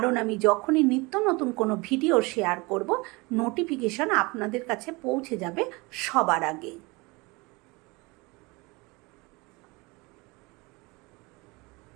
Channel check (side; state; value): left; quieter; 25.4 dB